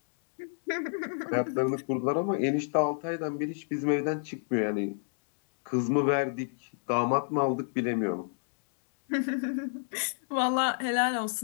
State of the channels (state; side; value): silent; right; digital silence